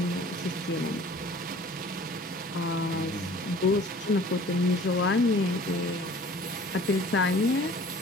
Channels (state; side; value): normal; both; correlation 0.48